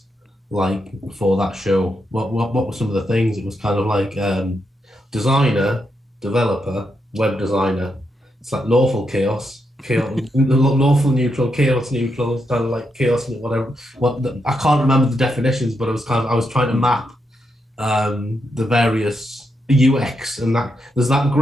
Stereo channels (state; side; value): normal; both; correlation 0.82